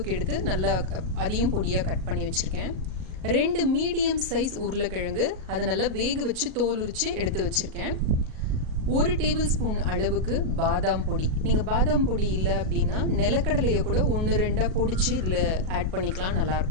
எடுத்து நல்லா அதையும் பொடியாக கட் பண்ணி வச்சுருக்கேன். 2 மீடியம் சைஸ் உருளைக்கிழங்கு, அதை நல்லா வேக வச்சு தோல் உரித்து எடுத்து வச்சுருக்கேன். 1 டேபிள் ஸ்பூன் அளவுக்கு பாதாம் பொடி. நீங்கள் பாதாம் பொடி இல்லை அப்படின்னா நிலக்கடலையை கூட 1-2 பொடிச்சு இதில் ஆட் பண்ணிக்கலாம்,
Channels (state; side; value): late; left; 37 ms